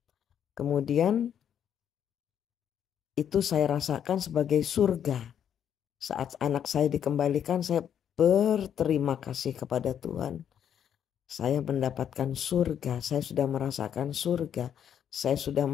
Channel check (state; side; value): quieter; right; 9.0 dB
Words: Kemudian itu saya rasakan sebagai surga. Saat anak saya dikembalikan, saya berterima kasih kepada Tuhan. Saya mendapatkan surga, saya sudah merasakan surga. Saya sudah